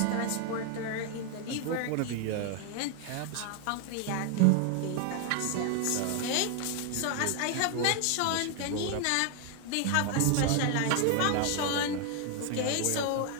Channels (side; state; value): both; different; correlation 0.00